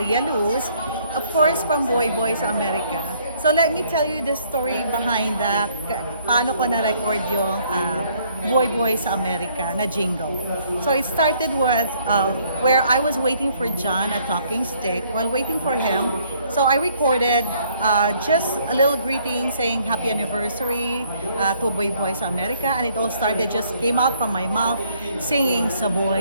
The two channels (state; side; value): inverted; both; correlation -0.65